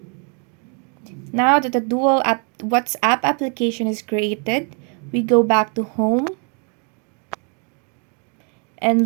Now that the WhatsApp application is created, we go back to home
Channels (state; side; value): quieter; left; 38.9 dB